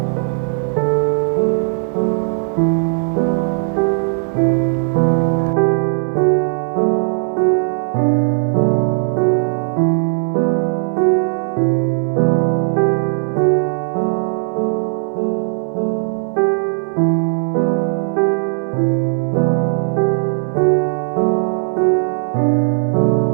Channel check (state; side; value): silent; left; digital silence